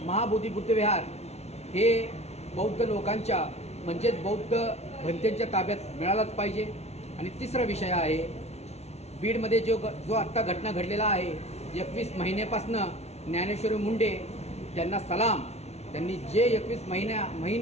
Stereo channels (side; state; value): right; late; 0.31 ms